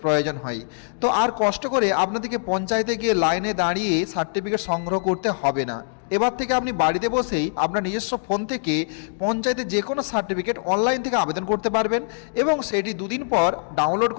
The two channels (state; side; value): silent; right; digital silence